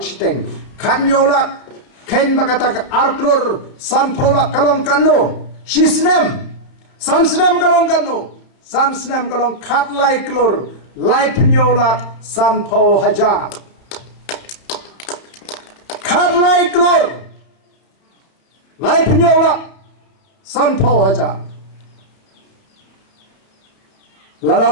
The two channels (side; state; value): right; late; 31 ms